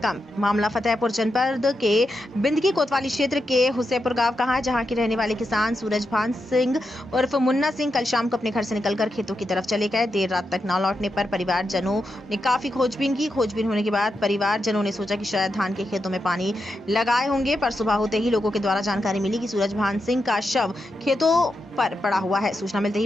मामला फतेहपुर जनपद के बिंदकी कोतवाली क्षेत्र के हुसैपुर गांव का है, जहां के रहने वाले किसान सूरजभान सिंह उर्फ मुन्ना सिंह कल शाम को अपने घर से निकलकर खेतों की तरफ चले गए। देर रात तक न लौटने पर परिवारजनों ने काफी खोजबीन की। खोजबीन होने के बाद परिवारजनों ने सोचा कि शायद धान के खेतों में पानी लगाए होंगे, पर सुबह होते ही लोगों के द्वारा जानकारी मिली कि सूरजभान सिंह का शव खेतों पर पड़ा हुआ है। सूचना मिलते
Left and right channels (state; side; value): normal; both; correlation 0.86